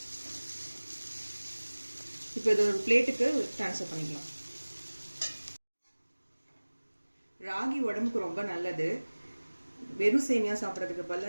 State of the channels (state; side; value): inverted; both; correlation -1.00